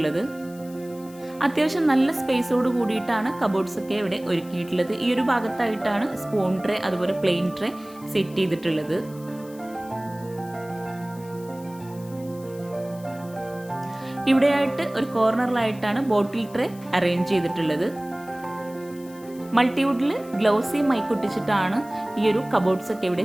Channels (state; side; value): noise; left; hiss, 23 dB below the sound